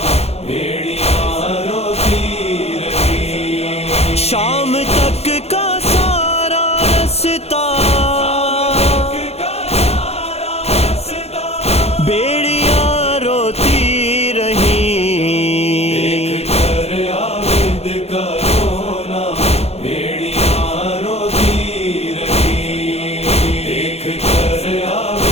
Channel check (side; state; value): right; late; 0.30 ms